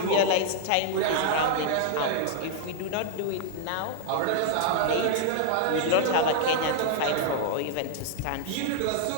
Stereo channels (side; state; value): both; different; correlation -0.01